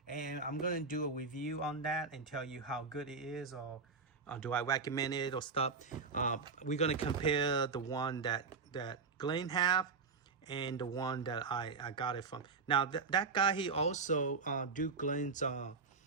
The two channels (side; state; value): left; quieter; 4.7 dB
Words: and I'm gonna do a review on that and tell you how good it is, or do I recommend it or stuff. We're gonna compare the one that Glenn have and the one that I got it from. Now that guy, he also do Glenn's